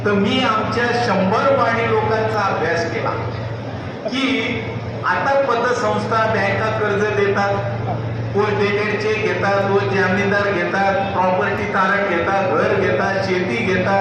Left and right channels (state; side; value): identical; both; correlation 1.00